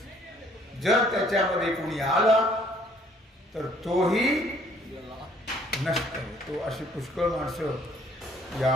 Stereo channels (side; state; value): both; normal; correlation 0.61